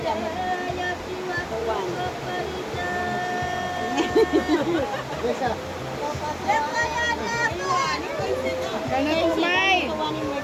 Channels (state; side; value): identical; both; correlation 1.00